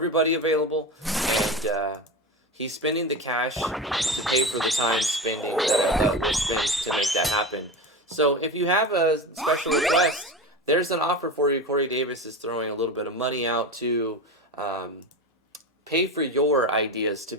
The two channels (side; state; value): both; normal; correlation 0.24